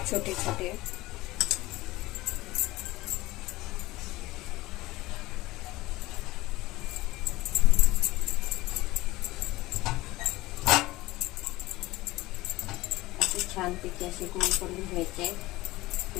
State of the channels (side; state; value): right; quieter; 19.0 dB